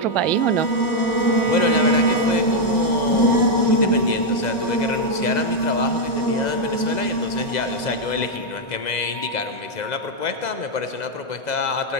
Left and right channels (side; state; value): right; late; 2.0 ms